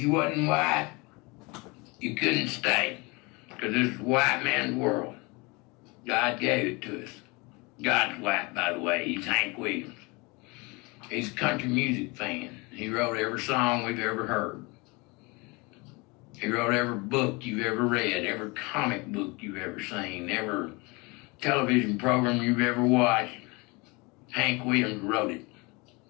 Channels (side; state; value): right; quieter; 26.8 dB